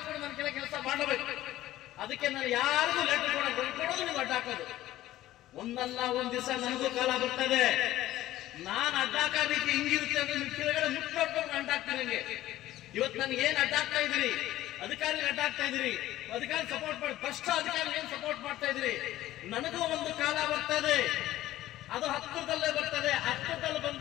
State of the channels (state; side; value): quieter; right; 14.9 dB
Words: ಕೂಡ ನನ್ನ ಕೆಳಗೆ ಕೆಲಸ ಮಾಡಬೇಕು. ಅದಕ್ಕೆ ನಾನು ಯಾರಿಗೂ ಲೆಟರ್ ಕೊಡೋದು ನೀವು ಅಡ್ಡ ಹಾಕೋದು. ಒಂದಲ್ಲ ಒಂದ್ ದಿವಸ ನನಗೂ ಕಾಲ ಬರ್ತದೆ. ನಾನು ಅಡ್ಡಾಕ ರೀತಿ ಹಿಂಗಿರುತ್ತೆ ಅಂದ್ರೆ ನಿಮ್ ಕೆಳಗಡೆ ಮುಟ್ಟು ನೋಡ್ಕೊಂಡು ಅಡ್ಡಾಕ್ತೀನಿ. ನನಗೆ ಇವತ್ತು ನನಗೆ ಏನ್ ಅಡ್ಡಾಕ್ತಾ ಇದ್ದೀರಿ, ಅಧಿಕಾರಿ ಅಡ್ಡಾಕ್ತಾ ಇದ್ದೀರಿ, ಅಧಿಕಾರಿ ಸಪೋರ್ಟ್ ಮಾಡಿ ಭ್ರಷ್ಟ ಅಧಿಕಾರಿ ಏನ್ ಸಪೋರ್ಟ್ ಮಾಡ್ತಾ ಇದ್ರಿ. ನನಗೂ ಒಂದು ಕಾಲ ಬರ್ತದೆ, ಅದು ಹತ್ತಿರದಲ್ಲೇ ಬರ್ತದೆ. ಹತ್ತಿರದಲ್ಲಿ